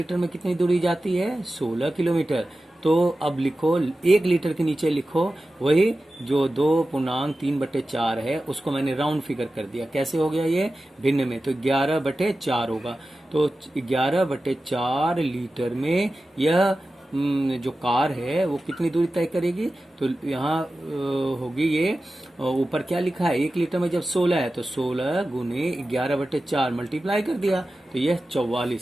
में कितनी दूरी जाती है, 16 किलोमीटर। तो अब लिखो, 1 लीटर के नीचे लिखो वही जो 2.3/4 है, उसको मैंने राउंड फिगर कर दिया। कैसे हो गया ये, भिन्न में, तो 11/4 होगा। तो 11/4 लीटर में यह जो कार है वो कितनी दूरी तय करेगी, तो यहाँ होगी ये, ऊपर क्या लिखा है, 1 लीटर में जब 16 है तो 16 × 11/4 मल्टीप्लाई कर दिया, तो यह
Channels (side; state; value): both; normal; correlation 0.94